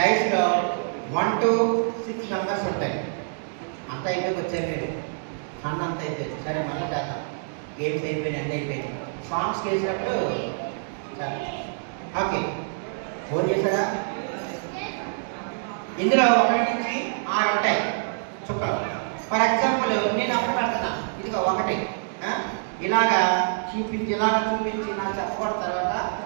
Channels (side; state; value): left; silent; digital silence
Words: 1 to 6 మెంబర్స్ ఉంటాయి. అంత అయిపోయి వచ్చాయి మీరు ఫండ్ అంత అయిపోయింది. సరే మళ్ళీ దాకా గేమ్స్ అయిపోయినాయి, అన్నీ అయిపోయింది. సాంగ్స్కి వేసినప్పుడు సరే ఓకే. ఫోన్ చేశారా? ఇందులో 1 నుంచి 6 ఉంటాయి చుక్కలు. ఫర్ ఎగ్జాంపుల్ నేను అప్పుడు పెడుతున్నా, ఇదిగో 1 ఇలాగా చూపించి నాకు చెప్పబడిన తర్వాత